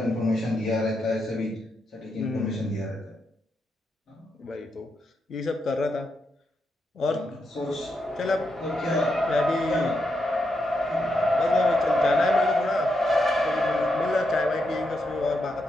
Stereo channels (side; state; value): both; normal; correlation 0.83